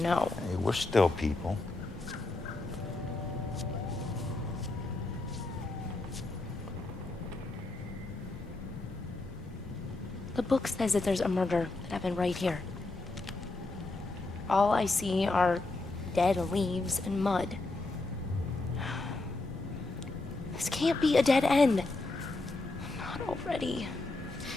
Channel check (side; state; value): right; quieter; 3.2 dB